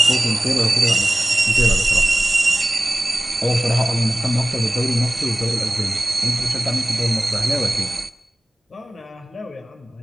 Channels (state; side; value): normal; both; correlation 0.98